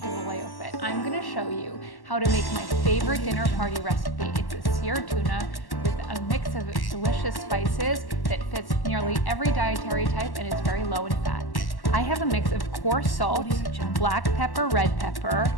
Vallejo Fit. I'm going to show you how to make my favorite dinner party recipe. It's a seared tuna with a mix of delicious spices that fits nearly every dietary type and is very low in fat. I have a mix of coarse salt, black pepper, red pepper,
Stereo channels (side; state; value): right; late; 1.1 ms